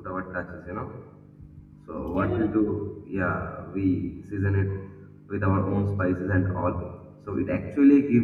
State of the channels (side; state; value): both; identical; correlation 1.00